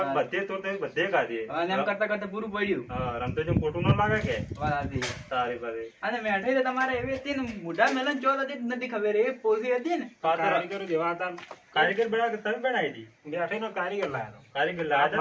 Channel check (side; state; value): both; identical; correlation 1.00